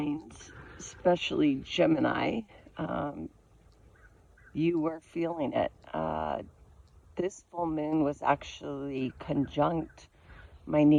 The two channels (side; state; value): both; identical; correlation 1.00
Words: especially Gemini, you were feeling it. This full moon was actually conjunct my